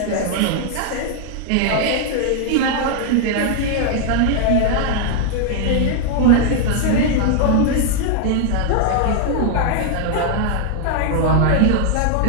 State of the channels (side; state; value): both; different; correlation 0.00